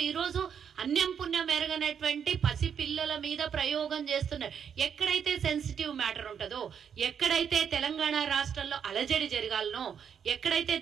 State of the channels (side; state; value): left; quieter; 7.7 dB